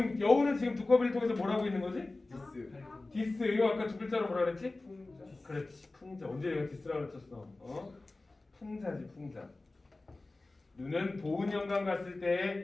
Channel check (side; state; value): right; quieter; 3.1 dB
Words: 여우는 지금 두꺼비를 통해서 뭐라고 있는 거지? 디스. 이거 아까 두 글자로 뭐라 그랬지? 풍자. 그렇지, 풍자. 언제 내가 디스라고 그랬었어? 풍자지, 풍자. 눈은 보은 영광 갔을